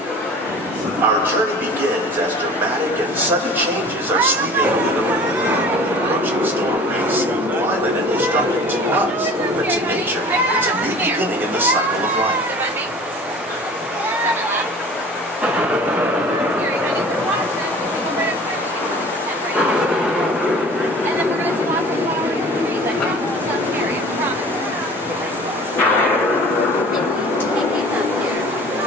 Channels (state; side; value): normal; both; correlation 0.44